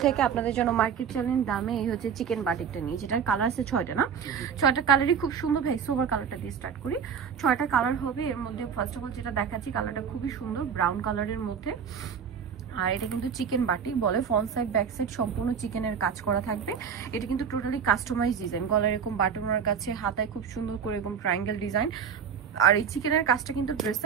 থেকে আপনাদের জন্য মার্কেট চ্যালেঞ্জ দামে এই হচ্ছে চিকেন বাটিকটা নিয়ে, যেটার কালার আছে 6টা না, 6টা কালারই খুব সুন্দর। ভাই সোভার কালারটা দিয়ে স্টার্ট করি। 6টা কালার হবে, এর মধ্যে ফার্স্ট অফ অল যেটা দেখাচ্ছি কালারটা খুবই সুন্দর, ব্রাউন কালারের মধ্যে। আর এটা কিন্তু চিকেন বাটিক বলে, ফ্রন্ট সাইড ব্যাক সাইড সম্পূর্ণ চিকেনের কাজ করা থাকবে। এটা কিন্তু টোটালি কাস্টমাইজ ডিজাইন, গলার এরকম বাটনের কাছে, হাতায় খুব সুন্দর করে এরকম ট্রায়াঙ্গেল ডিজাইন। আর এই চিকেনের কাজটা কিন্তু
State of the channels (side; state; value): left; quieter; 7.1 dB